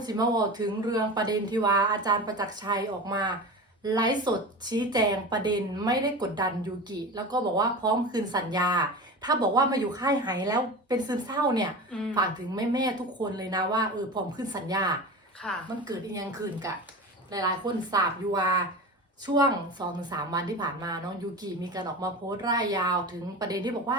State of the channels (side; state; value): both; normal; correlation 0.29